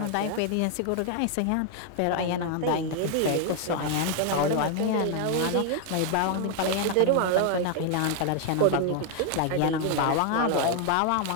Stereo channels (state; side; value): different; both; correlation 0.00